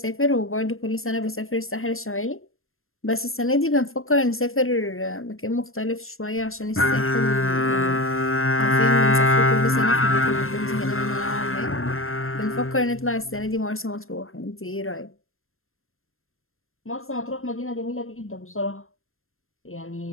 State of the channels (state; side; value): late; right; 0.61 ms